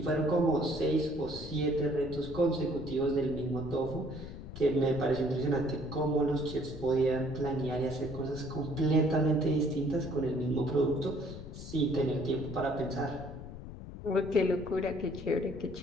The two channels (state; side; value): noise; left; rumble, 11 dB below the sound